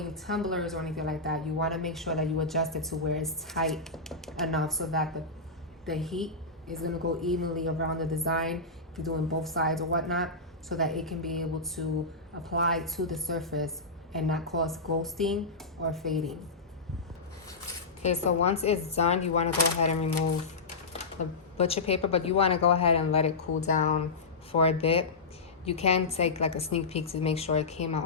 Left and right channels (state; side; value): quieter; right; 3.6 dB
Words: tumblers or anything like that, you wanna make sure that you adjust it to where it's tight enough so that the heat is gonna go evenly around the design, if you're doing both sides or whatnot, so that it can be able to apply to the surface and not cause ghosting or fading. Okay, so once it's done, you wanna go ahead and remove the butcher paper, but you wanna go ahead and let it cool down for a bit. You can take like a sneak peek to make sure it came